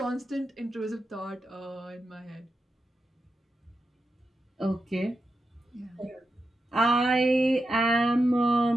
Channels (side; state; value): both; normal; correlation 0.89